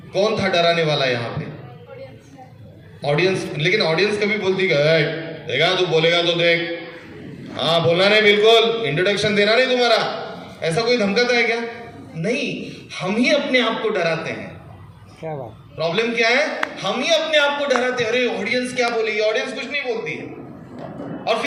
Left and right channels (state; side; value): identical; both; correlation 1.00